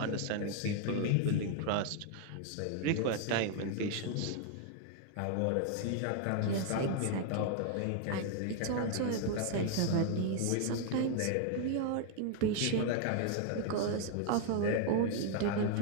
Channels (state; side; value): different; both; correlation 0.00